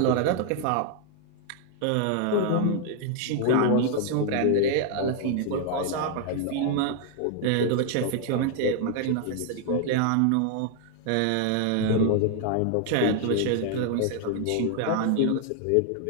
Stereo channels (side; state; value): both; different; correlation 0.00